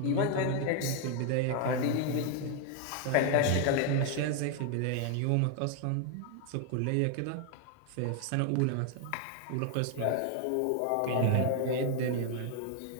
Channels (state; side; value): different; both; correlation 0.00